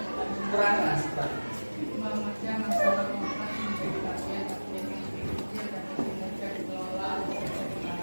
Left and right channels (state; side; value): inverted; both; correlation -1.00